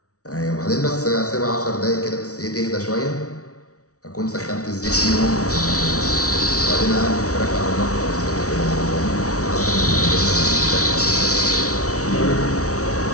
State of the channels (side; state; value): right; late; 0.66 ms